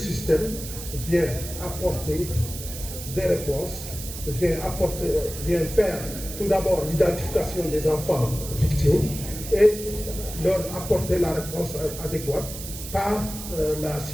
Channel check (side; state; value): right; noise; hiss, 10 dB below the sound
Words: vient apporter des réponses, vient faire tout d'abord l'identification des enfants victimes et leur apporter la réponse adéquate par la